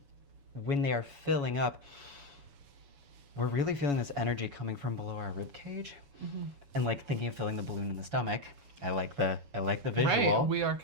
when they are filling up, we're really feeling this energy coming from below our rib cage, and like thinking of filling the balloon in the stomach. I like the visual. Right, we are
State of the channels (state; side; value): late; left; 7.1 ms